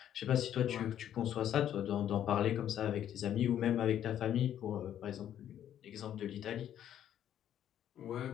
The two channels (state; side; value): quieter; right; 10.6 dB